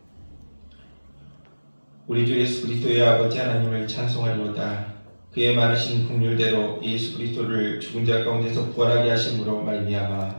우리 주 예수 그리스도의 아버지 하나님을 찬송하리로다. 그의 많으신 긍휼대로 예수 그리스도를 죽은 자 가운데서 부활하게 하심으로 말미암아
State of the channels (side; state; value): both; inverted; correlation -1.00